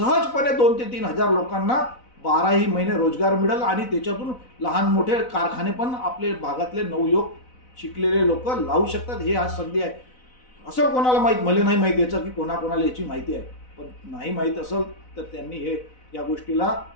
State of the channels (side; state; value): right; late; 4.0 ms